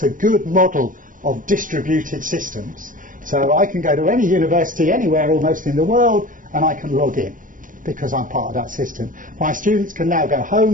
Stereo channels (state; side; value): late; left; 0.39 ms